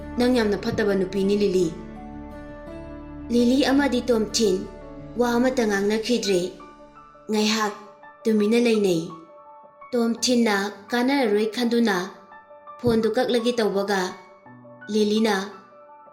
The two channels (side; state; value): both; identical; correlation 1.00